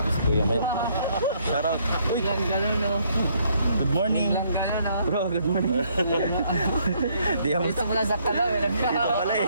si Kuya Mel. Shoutout. Uy, good morning. Bro, good morning. Di ako Wala sa kalaw, pala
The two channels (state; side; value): inverted; both; correlation -0.68